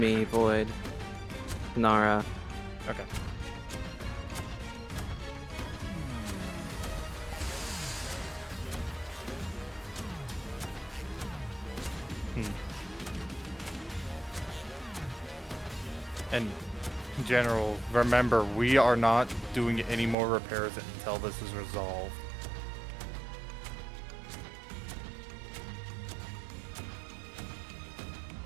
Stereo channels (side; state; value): left; drops out; at 20.2 s